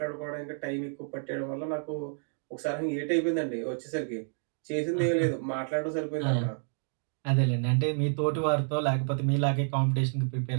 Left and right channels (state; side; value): silent; left; digital silence